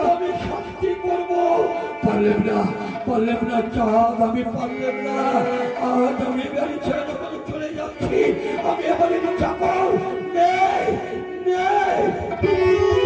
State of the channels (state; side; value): identical; both; correlation 1.00